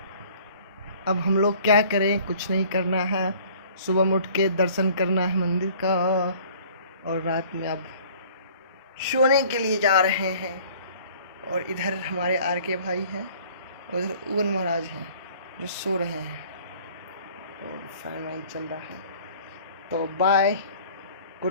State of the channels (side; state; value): both; inverted; correlation -0.52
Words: अब हम लोग क्या करें, कुछ नहीं करना है। सुबह में उठ के दर्शन करना है मंदिर का, और रात में अब सोने के लिए जा रहे हैं। और इधर हमारे आर के भाई हैं, और उधर उगन महाराज हैं जो सो रहे हैं, और फैन वैन चल रहा है। तो बाय,